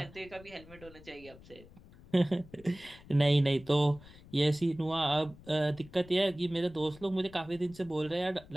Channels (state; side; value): noise; left; rumble, 21 dB below the sound